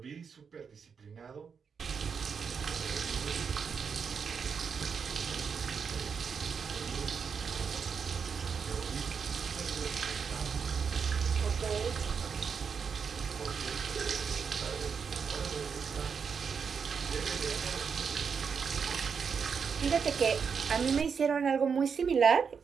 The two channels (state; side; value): quieter; left; 6.2 dB